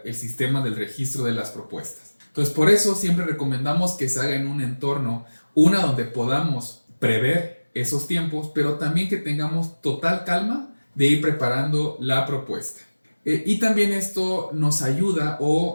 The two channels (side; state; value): both; inverted; correlation -1.00